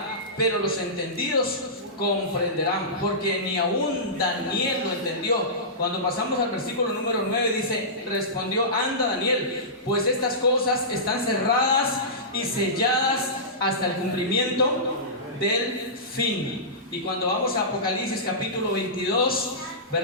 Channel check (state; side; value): normal; both; correlation -0.19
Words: pero los entendidos comprenderán, porque ni aún Daniel lo entendió. Cuando pasamos al versículo número 9 dice: respondió: anda, Daniel, pues estas cosas están cerradas y selladas hasta el cumplimiento del fin. Y cuando vamos a Apocalipsis capítulo 22,